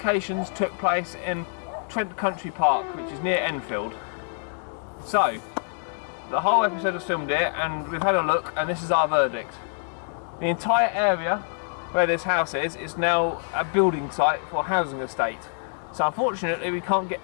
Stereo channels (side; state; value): right; silent; digital silence